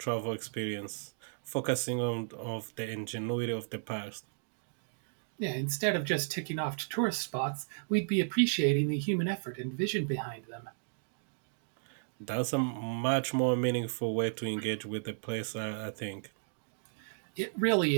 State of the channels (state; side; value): silent; left; digital silence